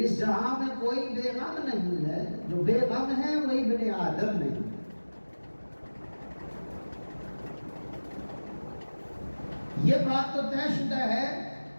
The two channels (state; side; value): inverted; both; correlation -1.00